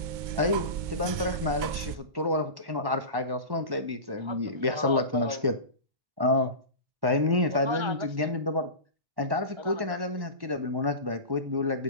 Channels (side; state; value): left; late; 2.2 ms